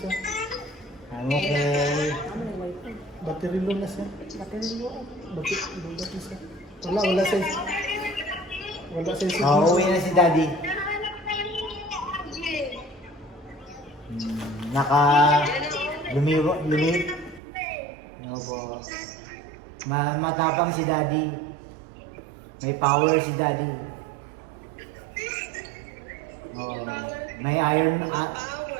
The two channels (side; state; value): left; drops out; at 17.4 s